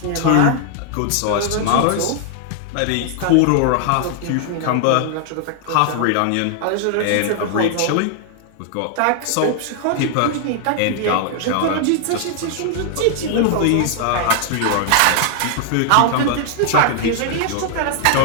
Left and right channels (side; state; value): both; different; correlation 0.00